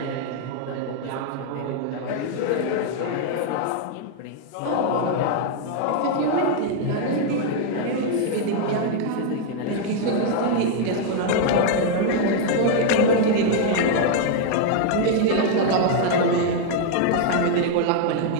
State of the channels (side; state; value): both; different; correlation 0.00